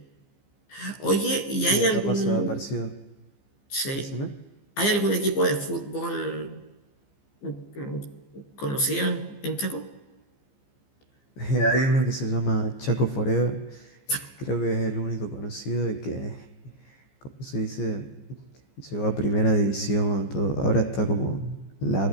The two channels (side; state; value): right; late; 15 ms